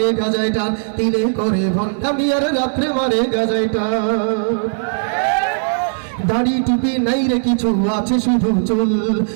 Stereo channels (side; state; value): left; silent; digital silence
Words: গাজায় টান, তিনে করে ভণ্ডামি আর রাত্রে মারে গাজায় টান। দাড়ি টুপি নাই রে কিছু, আছে শুধু চুল,